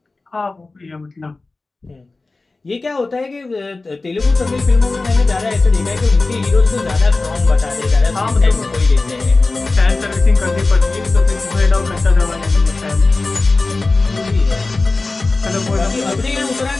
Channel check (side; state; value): right; quieter; 3.5 dB